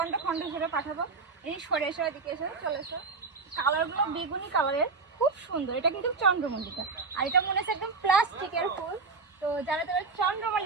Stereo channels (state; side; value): quieter; left; 4.4 dB